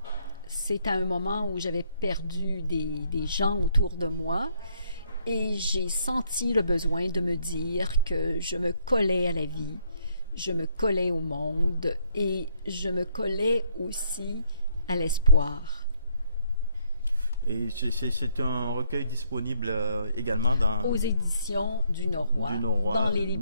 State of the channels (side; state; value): both; inverted; correlation -0.69